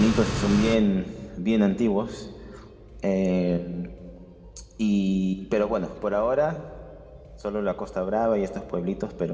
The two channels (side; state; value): both; identical; correlation 1.00